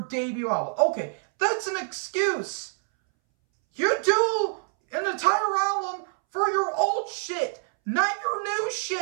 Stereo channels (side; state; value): left; silent; 61 dB below the other